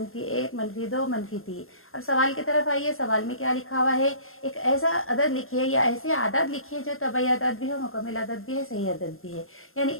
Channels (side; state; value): right; late; 0.61 ms